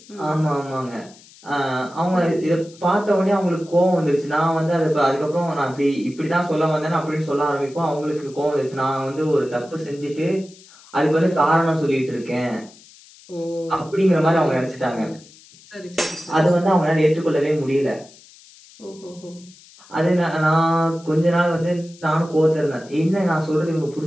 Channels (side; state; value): left; noise; hiss, 24 dB below the sound